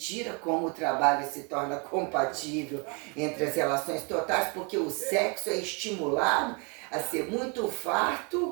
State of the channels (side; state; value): left; quieter; 33.4 dB